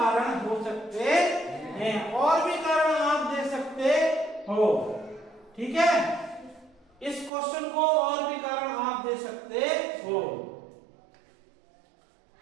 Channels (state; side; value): drops out; left; at 7.3 s